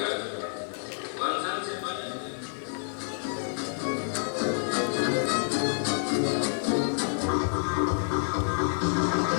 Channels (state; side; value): silent; right; digital silence